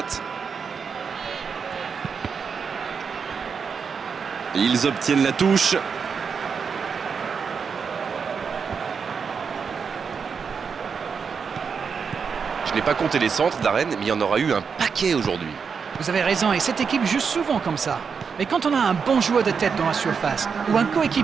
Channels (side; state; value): left; quieter; 6.0 dB